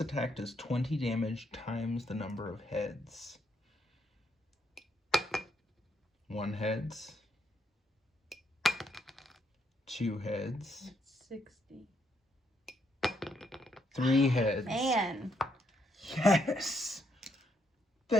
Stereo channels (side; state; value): both; normal; correlation 0.75